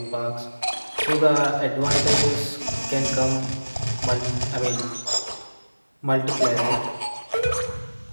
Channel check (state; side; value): inverted; both; correlation -1.00